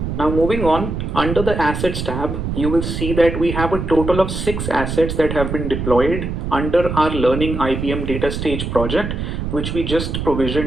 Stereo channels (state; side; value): noise; right; rumble, 4 dB below the sound